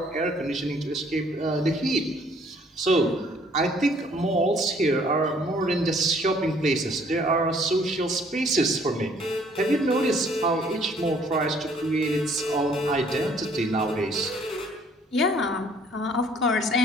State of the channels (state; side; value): normal; both; correlation 0.60